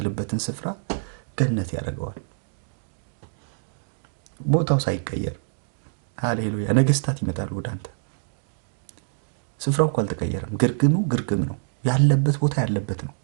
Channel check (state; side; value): silent; left; digital silence